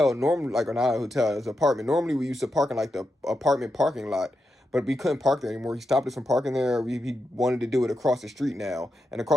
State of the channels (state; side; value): normal; both; correlation 0.87